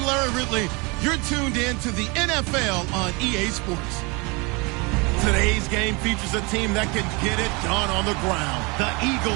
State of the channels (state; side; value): quieter; left; 28.2 dB